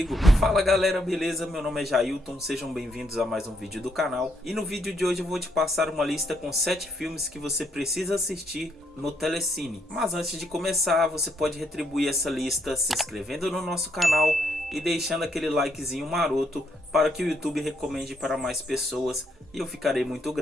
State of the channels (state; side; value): normal; both; correlation 0.74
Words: Fala galera, beleza? Meu nome é Jailton, sejam bem-vindos a mais um vídeo do canal. E no vídeo de hoje eu vou te passar uma lista com 7 filmes que você precisa assistir no Telecine. Mas antes de começar, você pode retribuir essa lista se inscrevendo no nosso canal e deixando aquele likezinho maroto para que o YouTube recomende para mais pessoas e eu ficarei muito